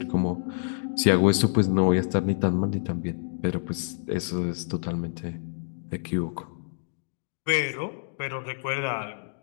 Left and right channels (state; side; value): silent; right; digital silence